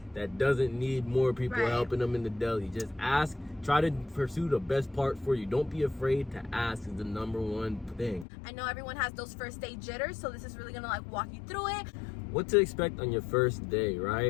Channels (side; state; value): right; drops out; at 8.2 s